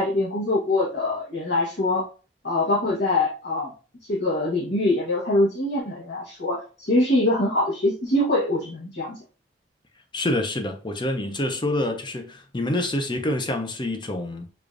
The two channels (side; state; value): both; normal; correlation 0.34